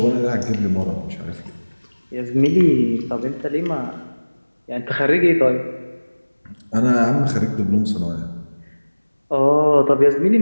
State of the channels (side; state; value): both; inverted; correlation -1.00